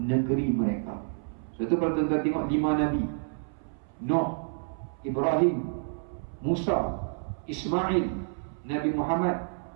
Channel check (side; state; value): left; silent; 58 dB below the other